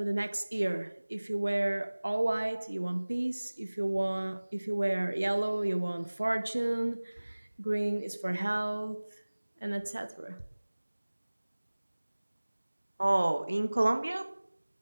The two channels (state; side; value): inverted; both; correlation -1.00